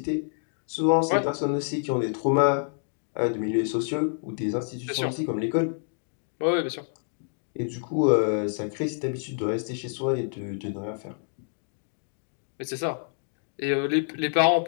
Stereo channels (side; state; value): right; silent; digital silence